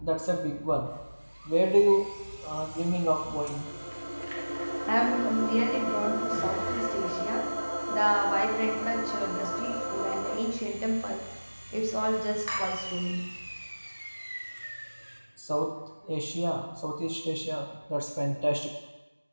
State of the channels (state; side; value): inverted; both; correlation -1.00